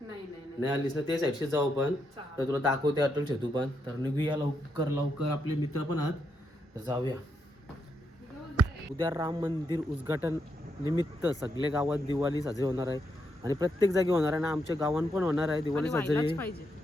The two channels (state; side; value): normal; both; correlation 0.80